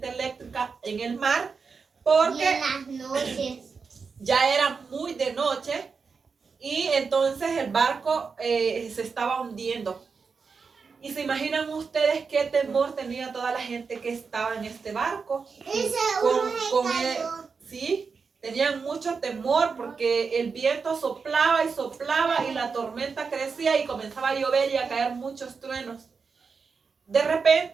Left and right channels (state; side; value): quieter; left; 5.2 dB